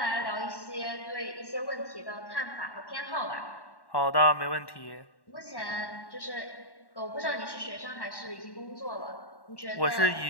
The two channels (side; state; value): right; late; 1.1 ms